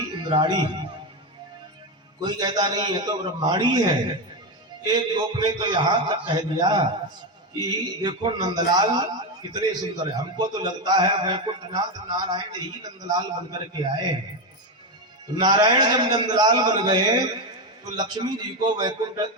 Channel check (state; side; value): normal; both; correlation 0.12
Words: इंद्राणी। कोई कहता नहीं है तो ब्रह्मांडी है। एक गोप ने तो यहाँ तक कह दिया कि देखो नंदलाल कितने सुंदर है, हमको तो लगता है वैकुंठनाथ नारायण ही नंदलाल बनकर के आए। नारायण जब नंदलाल बन गए तो लक्ष्मी जी को वैकुंठ